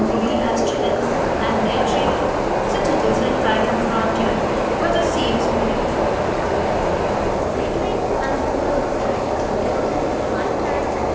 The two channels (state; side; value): identical; both; correlation 1.00